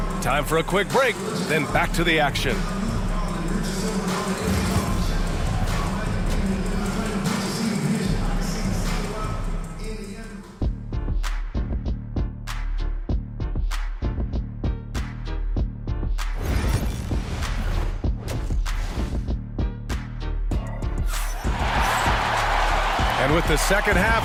Time for a quick break, then back to the action. And with the second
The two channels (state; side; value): identical; both; correlation 1.00